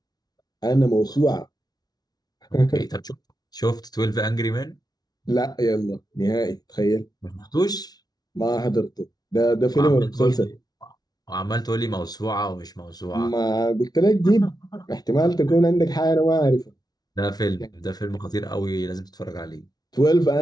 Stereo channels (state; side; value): late; right; 0.19 ms